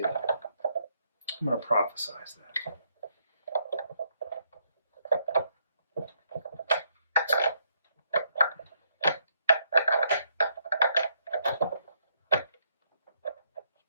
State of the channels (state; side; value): inverted; both; correlation -0.73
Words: I'm gonna prophesize that.